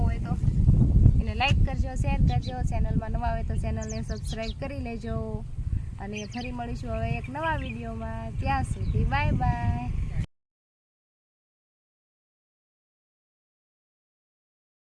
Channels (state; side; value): identical; both; correlation 1.00